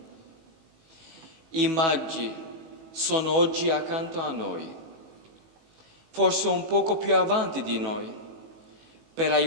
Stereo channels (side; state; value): left; late; 18 ms